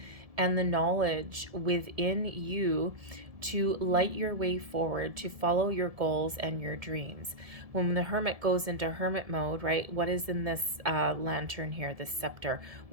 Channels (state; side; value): late; left; 1.7 ms